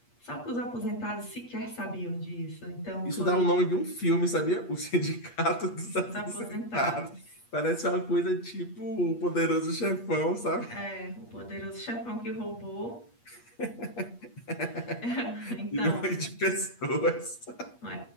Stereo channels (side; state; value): right; late; 8.4 ms